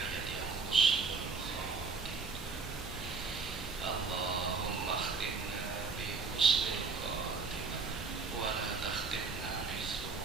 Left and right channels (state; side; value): quieter; left; 4.7 dB